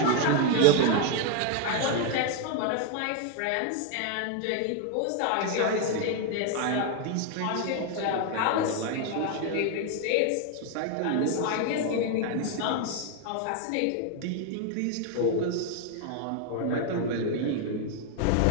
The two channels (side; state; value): both; different; correlation 0.01